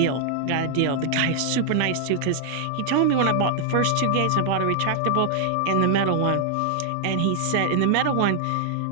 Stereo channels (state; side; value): different; both; correlation 0.00